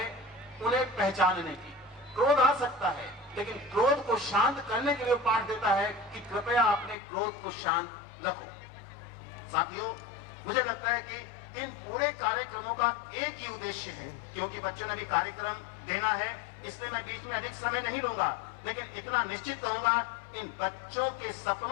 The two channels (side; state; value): right; drops out; at 7.0 s